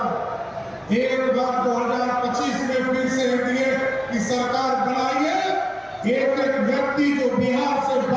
एक बार 2025 में फिर से एनडीए की सरकार बनाइए। एक एक व्यक्ति जो बिहार से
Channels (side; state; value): both; identical; correlation 1.00